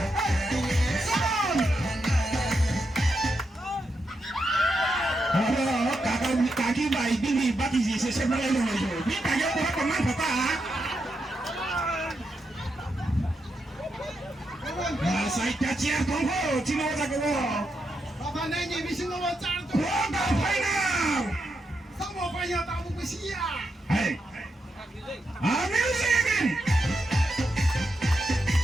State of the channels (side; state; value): both; normal; correlation 0.84